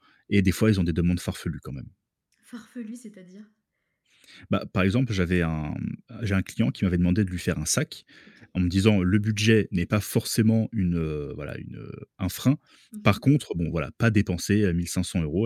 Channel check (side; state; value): both; identical; correlation 1.00